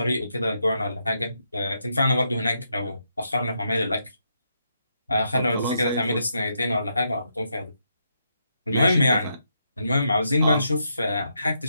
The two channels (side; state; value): both; inverted; correlation -0.80